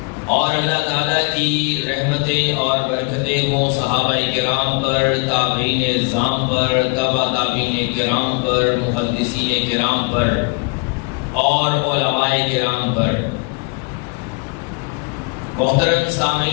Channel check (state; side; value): quieter; right; 31.8 dB